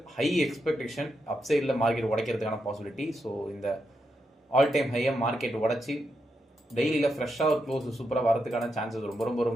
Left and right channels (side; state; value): both; normal; correlation 0.84